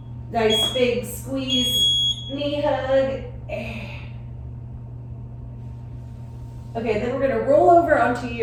Nice big squeeze, knee hug. Okay, then we're gonna roll over onto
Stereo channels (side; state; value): both; identical; correlation 1.00